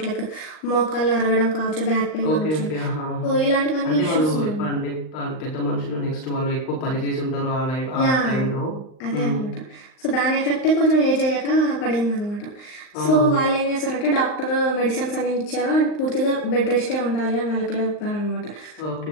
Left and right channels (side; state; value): right; late; 39 ms